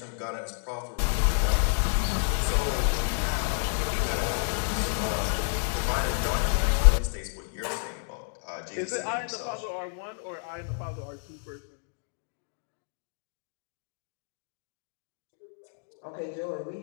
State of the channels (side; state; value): right; silent; digital silence